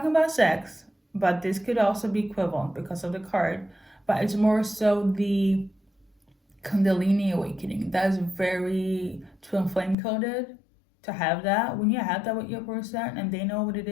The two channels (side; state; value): right; drops out; at 10.0 s